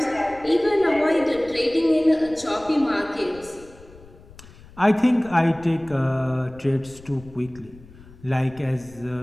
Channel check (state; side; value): noise; left; rumble, 22 dB below the sound